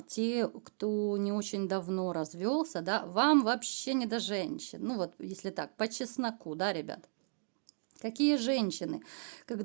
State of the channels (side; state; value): left; silent; 54 dB below the other